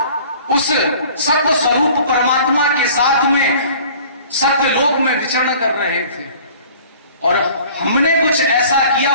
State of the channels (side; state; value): both; inverted; correlation -0.49